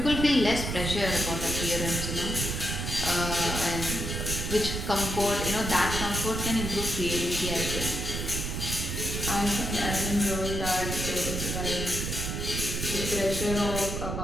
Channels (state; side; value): noise; right; rumble, 3 dB below the sound